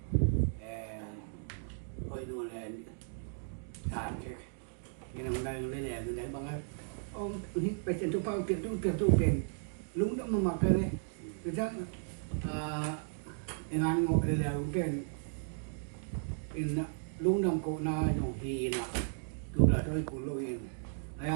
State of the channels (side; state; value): left; silent; digital silence